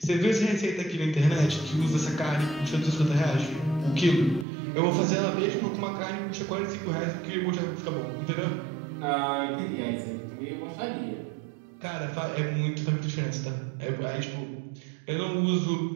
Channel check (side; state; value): left; drops out; at 4.5 s